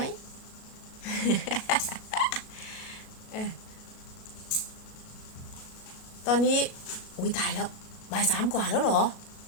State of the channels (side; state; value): right; late; 37 ms